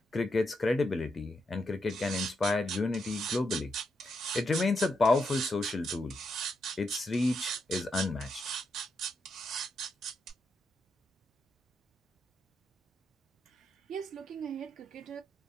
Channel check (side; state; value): both; normal; correlation 0.82